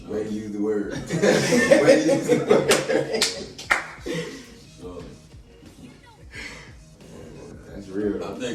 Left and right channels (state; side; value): identical; both; correlation 1.00